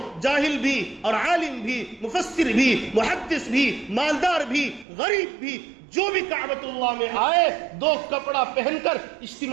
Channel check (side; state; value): left; drops out; at 4.9 s